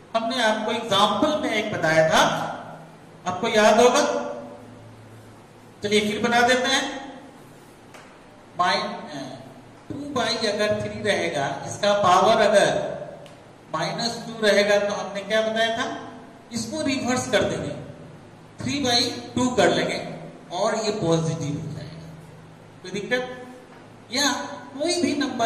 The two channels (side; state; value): both; identical; correlation 1.00